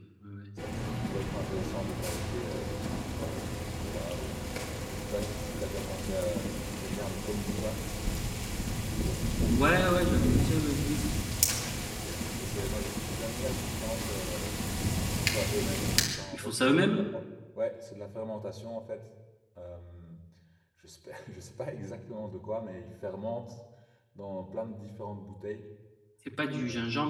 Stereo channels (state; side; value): identical; both; correlation 1.00